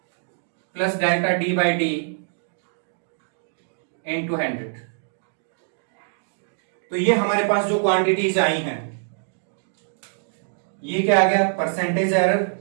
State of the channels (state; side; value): silent; left; digital silence